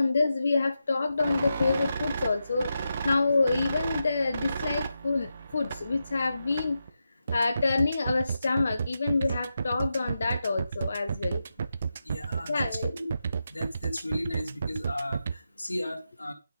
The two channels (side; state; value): both; inverted; correlation -0.88